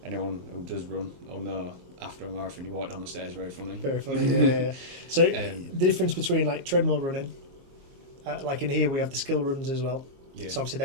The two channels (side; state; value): left; late; 22 ms